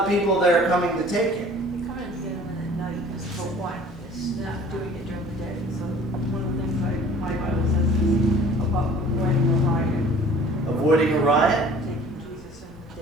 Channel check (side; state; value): both; normal; correlation 0.49